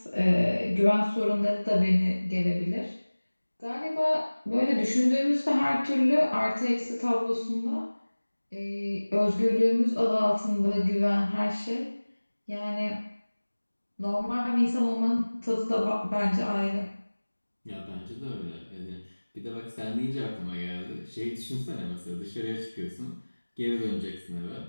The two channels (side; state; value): both; inverted; correlation -1.00